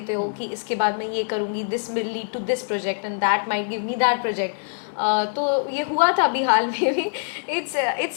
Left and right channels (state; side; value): silent; right; digital silence